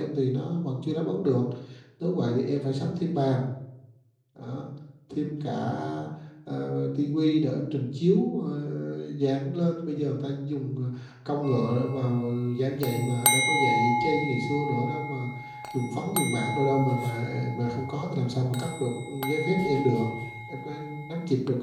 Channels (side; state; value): both; identical; correlation 1.00